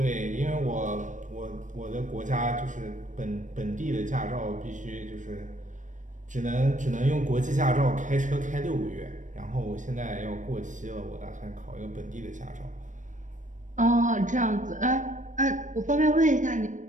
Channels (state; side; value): late; left; 0.37 ms